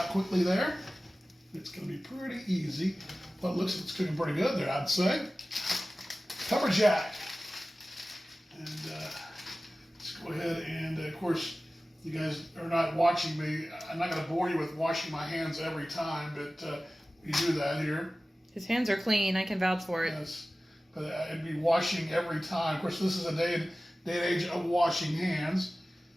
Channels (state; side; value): normal; both; correlation 0.96